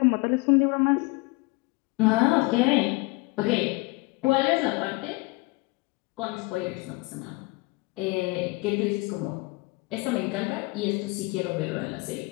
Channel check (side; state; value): right; quieter; 25.0 dB